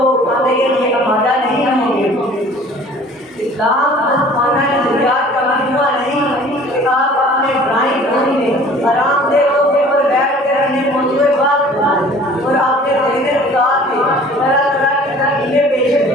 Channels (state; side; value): normal; both; correlation 0.49